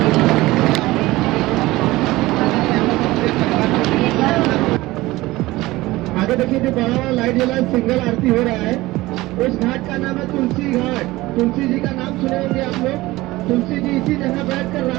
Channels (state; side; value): quieter; left; 18.9 dB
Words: आगे देखिए जो बड़ा वाला लाइट जला सिंगल आरती हो रहा है, उस घाट का नाम है तुलसी घाट। तुलसी जी का नाम सुने होंगे आप लोग। तुलसी जी इसी जगह बैठकर